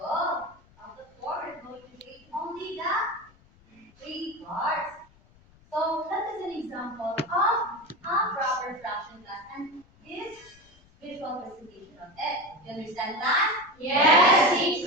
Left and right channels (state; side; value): noise; left; rumble, 28 dB below the sound